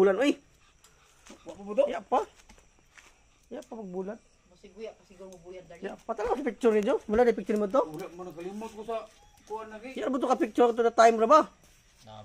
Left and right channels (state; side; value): identical; both; correlation 1.00